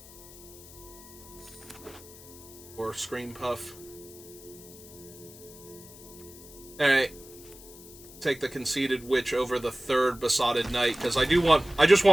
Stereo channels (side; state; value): left; noise; hiss, 19 dB below the sound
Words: Or Scream Puff. Alright. Take the Conceited Witch over the third Besotted Knight, because I just